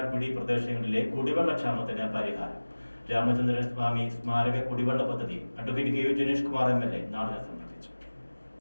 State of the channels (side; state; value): both; inverted; correlation -1.00